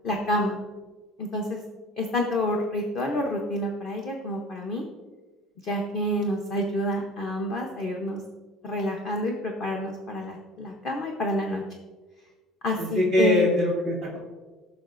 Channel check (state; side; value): normal; both; correlation 0.44